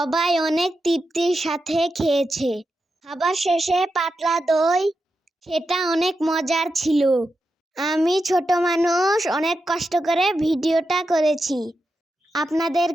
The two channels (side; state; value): both; normal; correlation 0.88